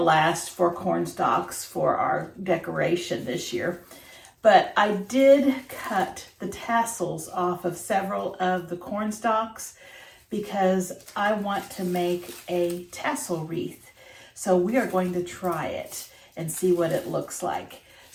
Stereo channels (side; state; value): both; identical; correlation 1.00